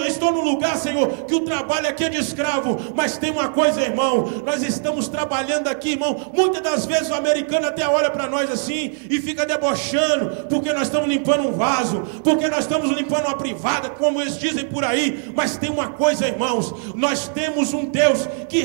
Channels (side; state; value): left; silent; 56 dB below the other